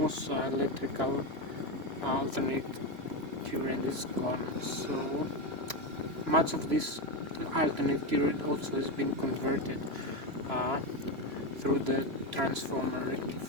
electrical alternate current is gone. So much of this alternate current also has been converted through the transformer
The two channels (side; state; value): left; late; 3.0 ms